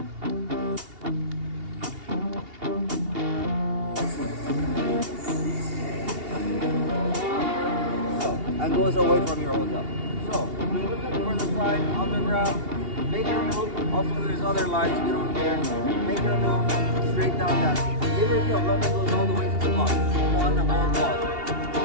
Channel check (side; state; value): left; late; 2.8 ms